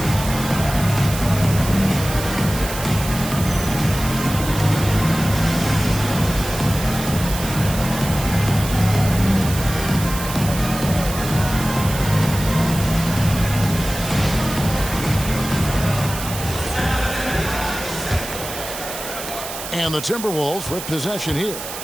And the Timberwolves with possession here.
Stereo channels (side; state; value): right; noise; hiss, 9 dB below the sound